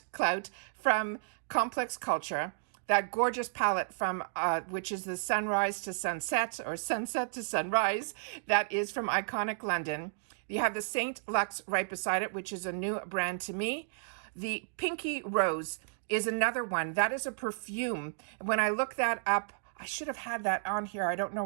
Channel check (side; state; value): left; silent; digital silence